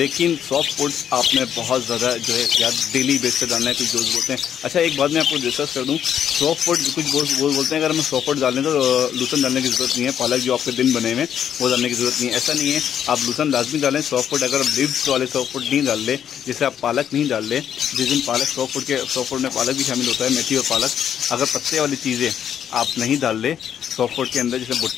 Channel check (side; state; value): right; quieter; 9.2 dB